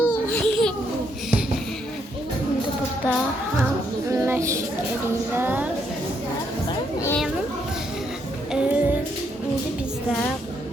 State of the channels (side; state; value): both; normal; correlation 0.74